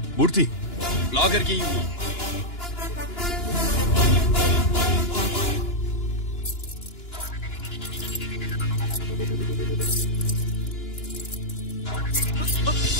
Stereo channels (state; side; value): late; right; 2.9 ms